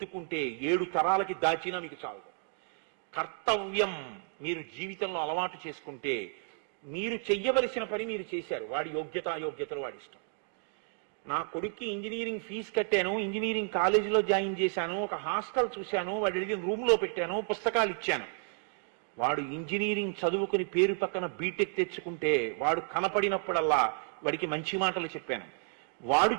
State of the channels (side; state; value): left; silent; 57 dB below the other